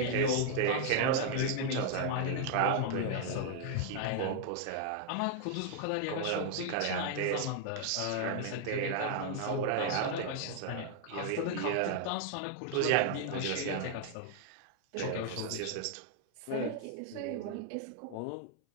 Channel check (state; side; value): different; both; correlation 0.00